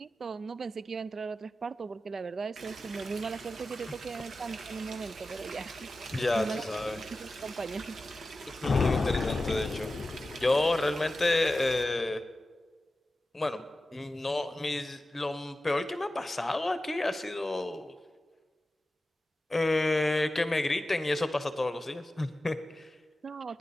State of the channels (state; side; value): normal; both; correlation 0.94